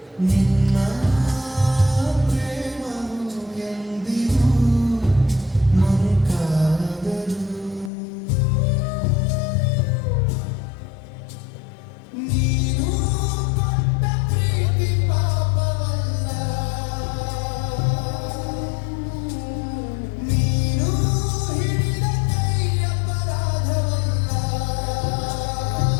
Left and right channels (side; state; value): right; drops out; at 7.9 s